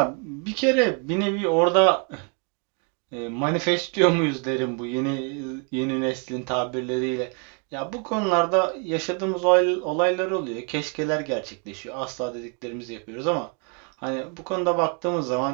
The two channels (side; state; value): left; quieter; 37.7 dB